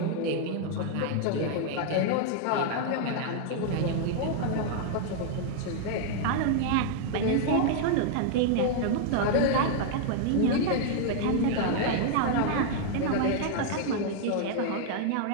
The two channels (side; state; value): both; different; correlation 0.00